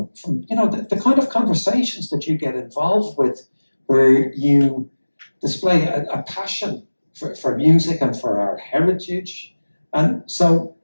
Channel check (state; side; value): inverted; both; correlation -1.00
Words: you know, the kind of conversations that you get involved with, where you display a passion for music and for our heritage. And so